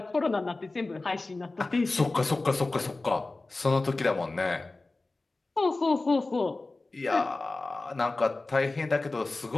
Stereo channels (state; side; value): quieter; right; 3.2 dB